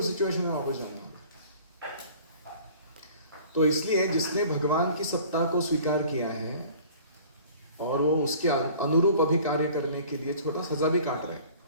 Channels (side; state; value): both; inverted; correlation -0.48